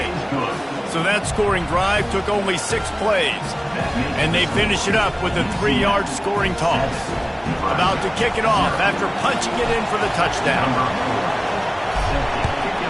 So that scoring drive took only 6 plays. And they finish it up with a 3-yard scoring toss. About to kick it off after punching it in for the touchdown.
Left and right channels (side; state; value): both; identical; correlation 1.00